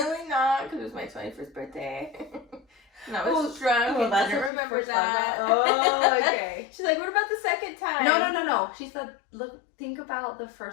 not, because it was my 21st birthday. And I was drunk. Well, and that's didn't what remember she first that. Oh, okay. She's like, what about the second time? No. She said, look, think about the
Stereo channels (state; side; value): drops out; right; at 4.5 s